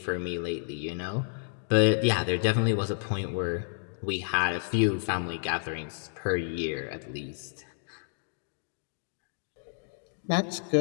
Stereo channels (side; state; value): right; silent; digital silence